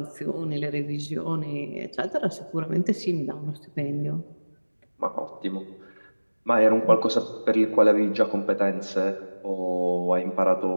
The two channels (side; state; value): both; inverted; correlation -1.00